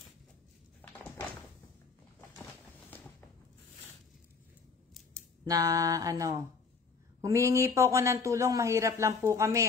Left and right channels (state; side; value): quieter; right; 4.9 dB